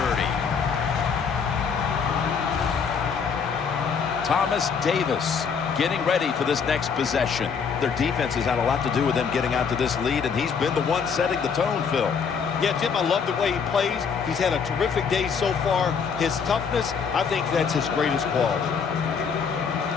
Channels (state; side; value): quieter; right; 6.2 dB